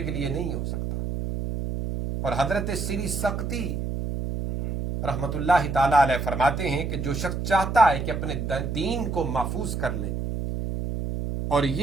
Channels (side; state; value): right; noise; hum, 3 dB below the sound